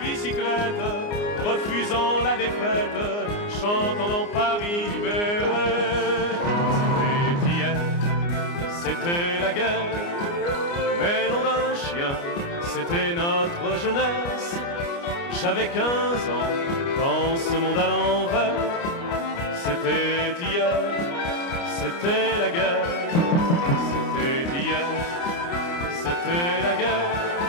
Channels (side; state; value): right; late; 29 ms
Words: refusant la défaite, chantant dans Paris libéré. C'était hier, c'était la guerre, mais non d'un chien, c'était notre jeunesse. J'avais 15 ans dans ce monde à l'envers. C'était hier, c'était la guerre, c'était hier, c'était la guerre,